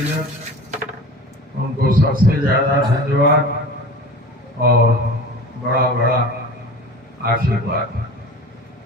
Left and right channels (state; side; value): normal; both; correlation 0.37